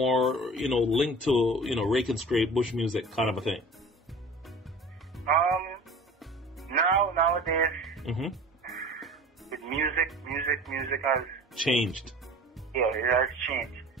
linked to, rake and scrape, bush music kind of a thing? Nowadays, with music has changed. Yeah, it has changed.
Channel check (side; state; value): both; normal; correlation 0.40